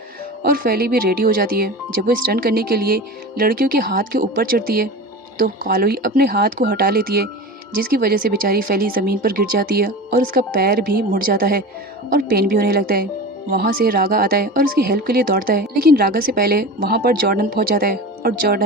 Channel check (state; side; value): normal; both; correlation 0.30